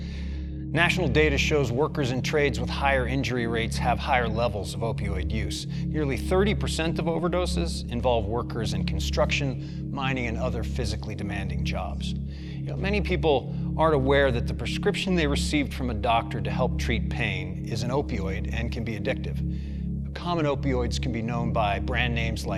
National data shows workers in trades with higher injury rates have higher levels of opioid use. Nearly 30% of overdoses involve workers in construction, mining, and other physically demanding jobs. Many people aren't aware that the prescription they received from a doctor to help treat pain is an opioid and can be addictive. Common opioids can be known by brand names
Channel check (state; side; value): identical; both; correlation 1.00